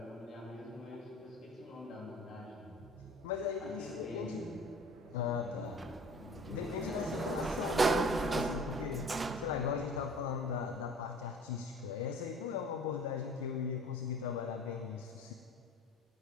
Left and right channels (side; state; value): both; normal; correlation 0.45